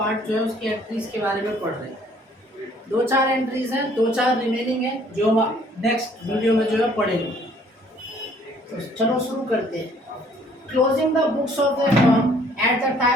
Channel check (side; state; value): both; normal; correlation 0.60